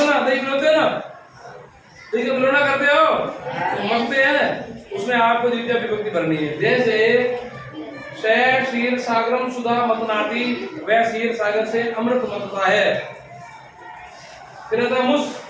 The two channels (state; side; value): identical; both; correlation 1.00